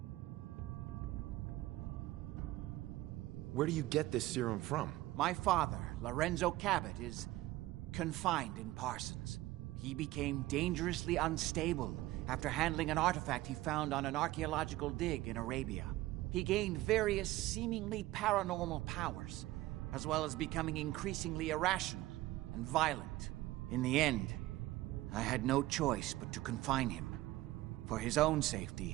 Where do you get this serum from? My father, Lorenzo Cabot, is confined in Parsons. He became dangerously unstable after handling an artifact he found on an archaeological dig in Arabia. He gained various seemingly paranormal powers, as well as becoming increasingly irrational and violent. In the end, I had no choice but to confine him, for his own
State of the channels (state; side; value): quieter; left; 17.2 dB